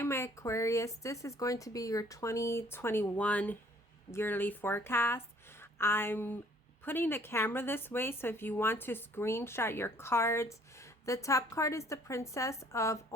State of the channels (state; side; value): normal; both; correlation 0.58